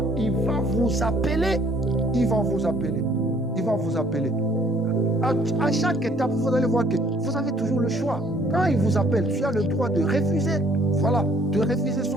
il va vous appeler. À chaque étape, vous allez voir que vous avez toujours le choix. Quand il vous appelle, tu as le droit de refuser. Voilà, de refuser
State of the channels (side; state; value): both; normal; correlation 0.60